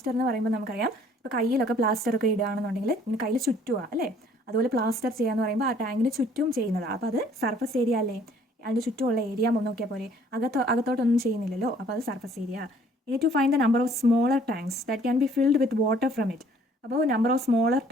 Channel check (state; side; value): normal; both; correlation 0.59